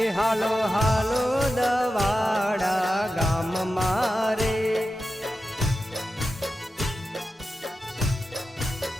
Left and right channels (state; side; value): normal; both; correlation 0.92